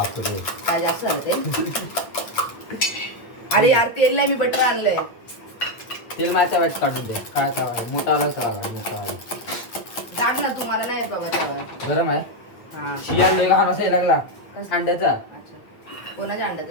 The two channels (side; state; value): right; late; 8.8 ms